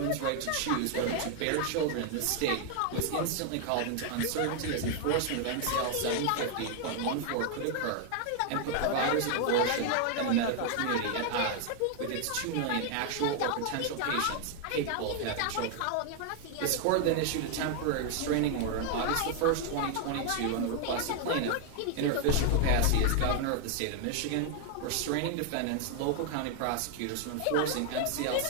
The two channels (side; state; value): both; different; correlation 0.00